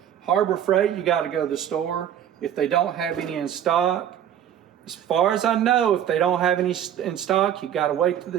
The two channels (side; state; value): left; quieter; 10.0 dB